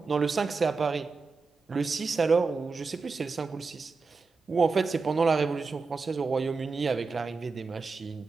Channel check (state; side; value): quieter; left; 4.4 dB